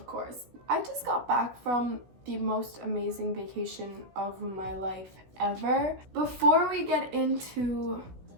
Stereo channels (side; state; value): left; late; 17 ms